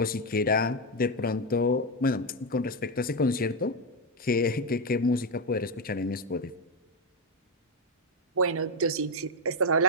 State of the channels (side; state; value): both; normal; correlation 0.07